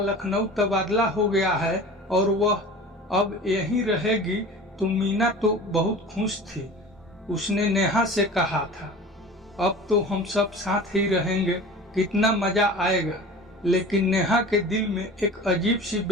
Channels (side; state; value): both; normal; correlation 0.38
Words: लखनऊ तबादला हो गया है और वह अब यहीं रहेगी, तो मीना तो बहुत खुश थी। उसने नेहा से कहा था, अब तो हम सब साथ ही रहेंगे, कितना मजा आएगा। लेकिन नेहा के दिल में एक अजीब सी